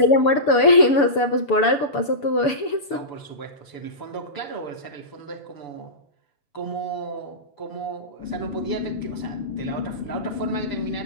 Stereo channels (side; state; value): right; late; 6.9 ms